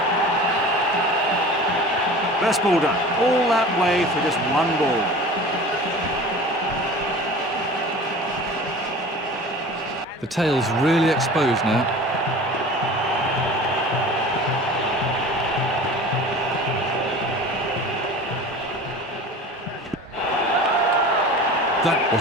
Best ball done. All that way for just one ball. The tail's really exposed now. That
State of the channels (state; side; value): normal; both; correlation 0.39